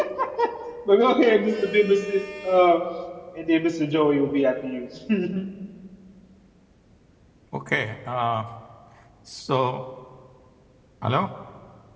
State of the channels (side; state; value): both; identical; correlation 1.00